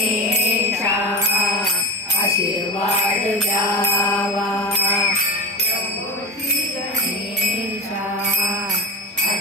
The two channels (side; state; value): both; normal; correlation 0.21